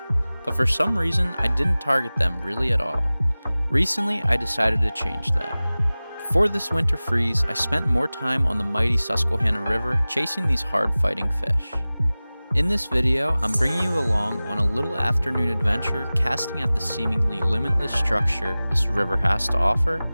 but for some reason I didn't target them really at all. Recently I decided to change that. Before this winter freeze, I spent more time on the mighty Susquehanna River chasing these hard-fighting fish. In this video, I'm bringing you along on a little afternoon adventure casting at the seemingly limitless structure this river has to offer,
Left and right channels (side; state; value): both; inverted; correlation -0.98